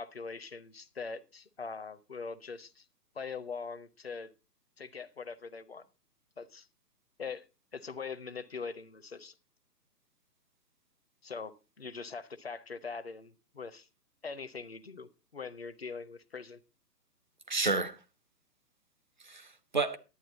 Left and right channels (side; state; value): both; normal; correlation 0.21